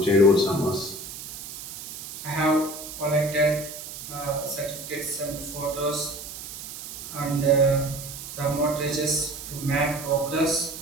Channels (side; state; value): right; noise; hiss, 11 dB below the sound